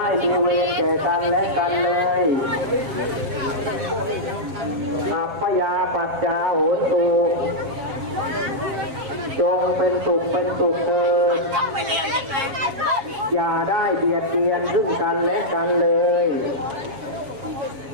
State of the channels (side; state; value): left; late; 7.4 ms